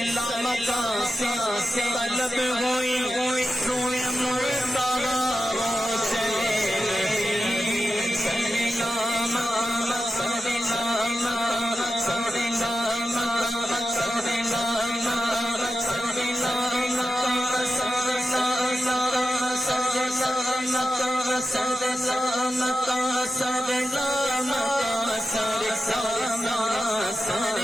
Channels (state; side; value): normal; both; correlation 0.91